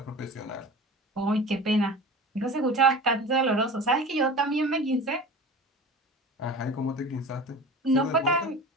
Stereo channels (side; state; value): both; normal; correlation 0.36